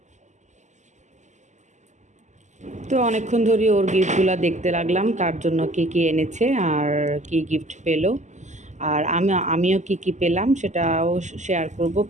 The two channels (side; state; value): left; late; 0.34 ms